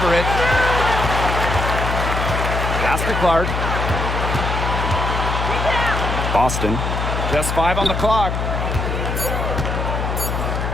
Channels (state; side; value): noise; left; hum, 2 dB below the sound